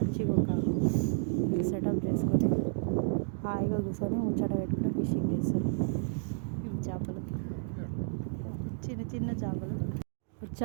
ఒక సెటప్ చేసుకొని హాయిగా కూర్చొని ముచ్చట పెట్టుకుని ఫిషింగ్ చేస్తారు. చేపలు, చిన్న చిన్న చేపలు.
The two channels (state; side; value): silent; left; digital silence